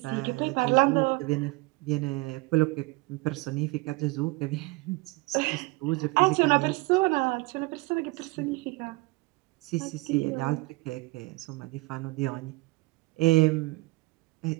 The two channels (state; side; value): quieter; left; 24.4 dB